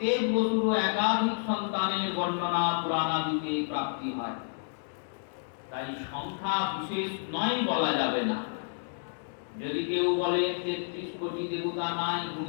বসুরও একাধিক সন্তানের বর্ণনা পুরাণাদিতে প্রাপ্তি হয়। তাই সংখ্যা বিশেষ নয় বলা যাবে না। যদি কেউ বলে 33 কোটি দেবতা নাই,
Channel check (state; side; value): silent; right; digital silence